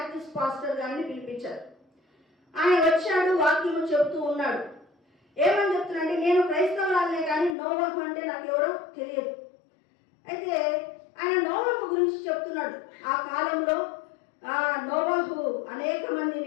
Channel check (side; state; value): right; drops out; at 7.6 s